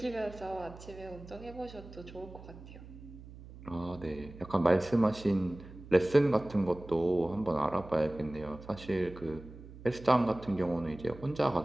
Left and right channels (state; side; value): noise; right; hum, 16 dB below the sound